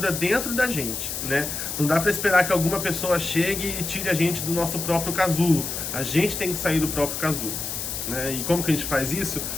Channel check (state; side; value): noise; left; hiss, 4 dB below the sound